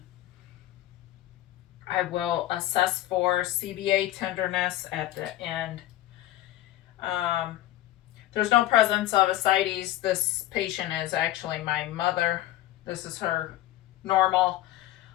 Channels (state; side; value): quieter; right; 15.0 dB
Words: I will assess for CBA tenderness at the end. There's no presence of ascites. This patient is actually my mother. This is her normal.